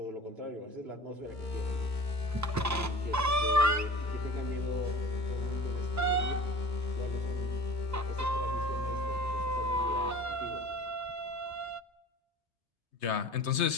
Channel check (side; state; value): both; normal; correlation 0.41